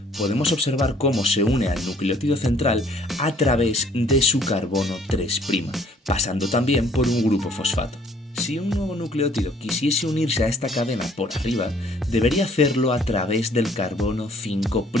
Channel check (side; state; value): both; normal; correlation 0.60